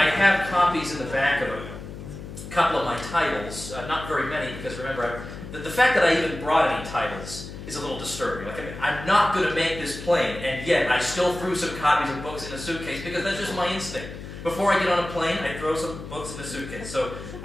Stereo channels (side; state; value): left; noise; hum, 11 dB below the sound